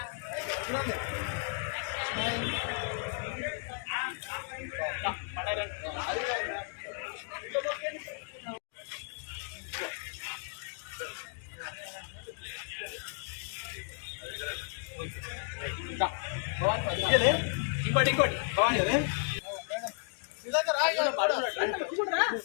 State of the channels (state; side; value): silent; right; 55 dB below the other